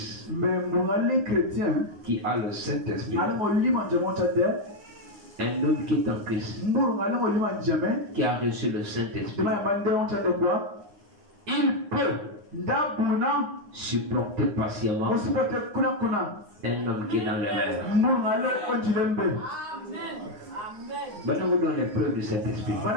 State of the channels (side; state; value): left; late; 9.6 ms